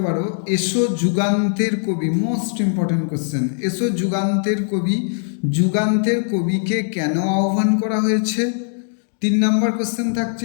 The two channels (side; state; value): right; silent; digital silence